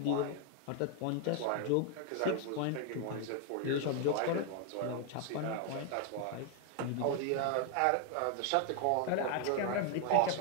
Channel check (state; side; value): different; both; correlation 0.00